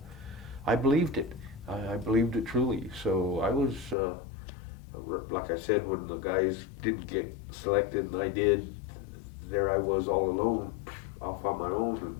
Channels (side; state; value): right; drops out; at 4.0 s